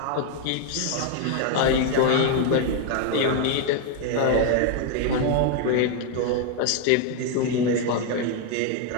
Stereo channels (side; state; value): both; different; correlation 0.01